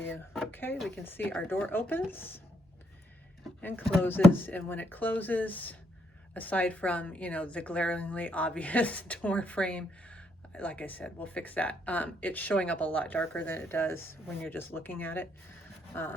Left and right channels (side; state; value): both; normal; correlation 0.74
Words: Okay, we can see our door opens and closes. And when it closes, aside from, you know, the glaringly obvious door frame, like I said, we'll fix that. It's showing up a lot darker than it does when you're just looking at it.